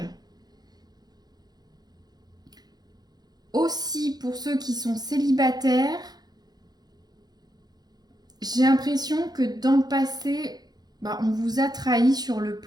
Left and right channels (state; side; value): late; left; 0.19 ms